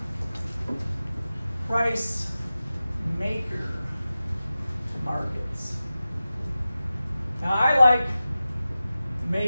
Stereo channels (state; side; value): inverted; both; correlation -0.95